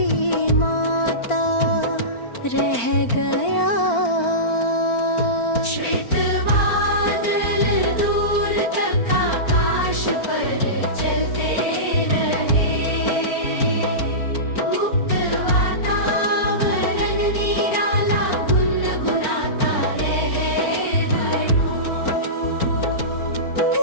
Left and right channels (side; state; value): right; late; 4.4 ms